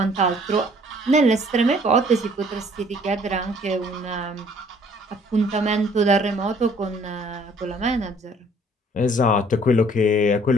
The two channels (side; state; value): both; normal; correlation 0.58